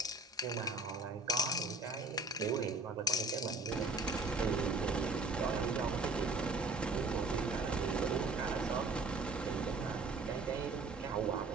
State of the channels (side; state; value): left; quieter; 3.4 dB